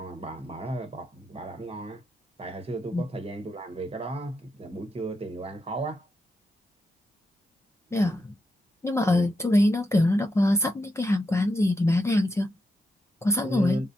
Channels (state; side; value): normal; both; correlation 0.84